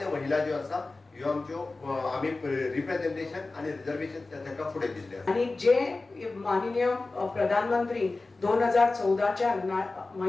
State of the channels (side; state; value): right; quieter; 3.4 dB